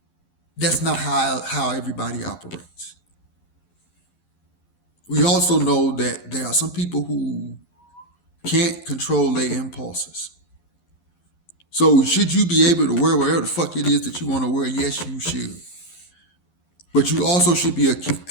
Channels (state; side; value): late; right; 11 ms